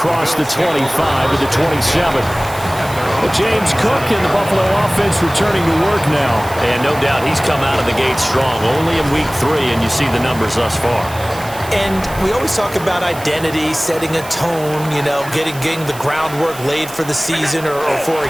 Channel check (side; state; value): right; noise; hiss, 16 dB below the sound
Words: the 25 to the 27. But James Cook and the Buffalo offense returning to work now. And no doubt he's come out of the gate strong, only in week 3, and you see the numbers thus far. And we always talk about identity, setting a tone, you know, getting the groundwork laid for the season or for